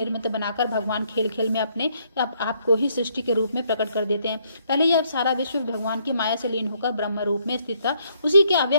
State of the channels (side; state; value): both; inverted; correlation -0.70